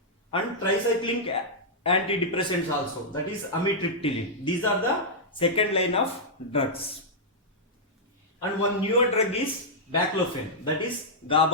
and tricyclic antidepressants also, that is amitriptyline. These are the second line of drugs. And one newer drug is baclofen, that is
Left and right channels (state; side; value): normal; both; correlation -0.08